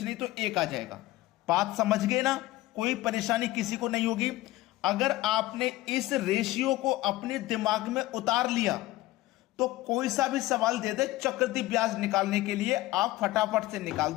नहीं तो 1 आ जाएगा। बात समझ गए ना? कोई परेशानी किसी को नहीं होगी। अगर आपने इस रेशियो को अपने दिमाग में उतार लिया तो कोई सा भी सवाल दे दे चक्रवृद्धि ब्याज निकालने के लिए, आप फटाफट से निकाल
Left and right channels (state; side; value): quieter; right; 17.5 dB